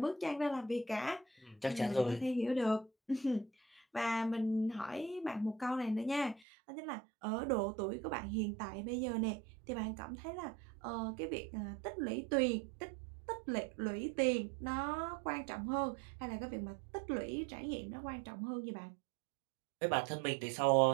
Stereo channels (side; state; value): left; drops out; at 6.4 s